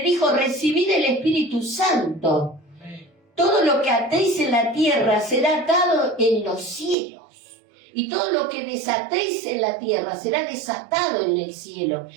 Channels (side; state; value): left; drops out; at 7.0 s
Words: dijo: recibid el Espíritu Santo. Todo lo que atéis en la tierra será atado en los cielos. Y todo lo que desatéis en la tierra será desatado en el cielo.